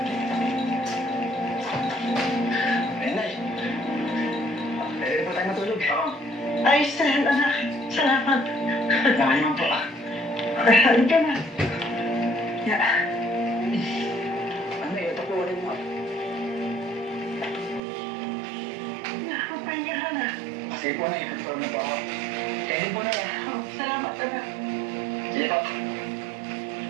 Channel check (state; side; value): drops out; left; at 17.8 s